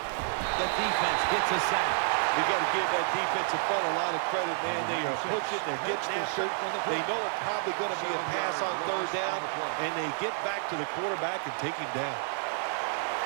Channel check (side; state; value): left; silent; digital silence